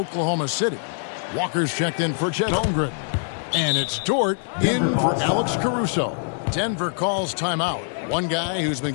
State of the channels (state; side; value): silent; right; digital silence